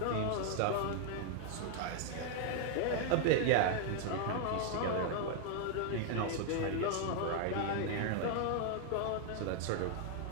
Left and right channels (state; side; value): different; both; correlation 0.00